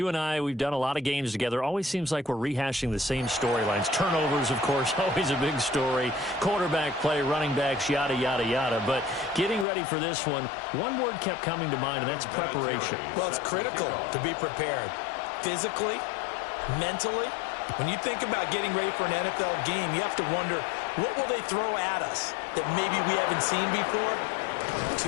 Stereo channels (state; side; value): drops out; right; at 9.7 s